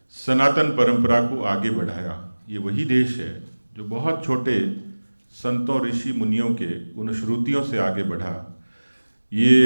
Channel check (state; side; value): inverted; both; correlation -1.00